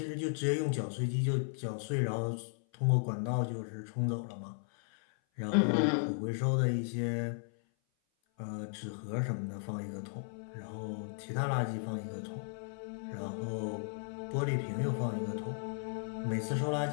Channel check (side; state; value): right; silent; 54 dB below the other